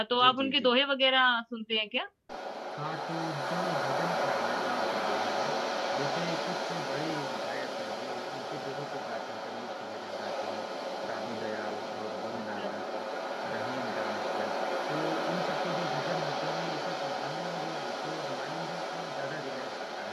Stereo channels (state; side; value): identical; both; correlation 1.00